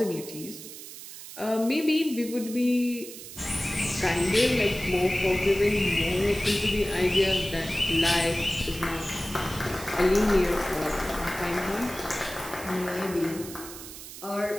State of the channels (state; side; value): noise; right; hiss, 13 dB below the sound